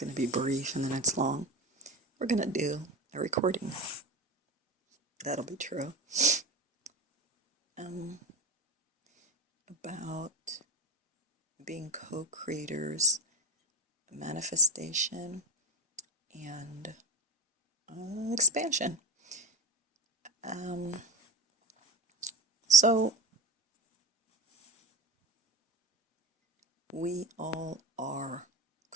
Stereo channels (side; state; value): both; normal; correlation 0.20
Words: to be brief and then it's long. We're going to do a recording. That'll be true. About being co-creators, manifestation, and expansion. So, we all are